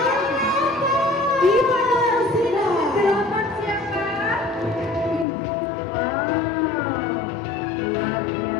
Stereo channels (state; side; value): drops out; right; at 5.2 s